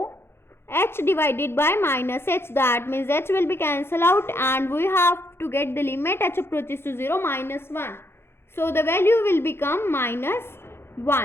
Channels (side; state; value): right; late; 0.12 ms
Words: h divided by minus h. That means h will be cancelled out and we have to get the limit h approaches to 0 minus 1. So the value will become minus